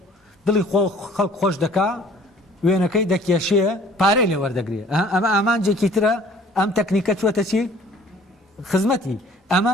دڵی خەڵک خۆش دەکا وێنەکەی دەکێشێ پارەی لێ وەردەگرێ ئەمە ئامانجێکی ترە ئەم تەکنیکە چوەتە چی خزمەتی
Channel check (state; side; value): normal; both; correlation 0.53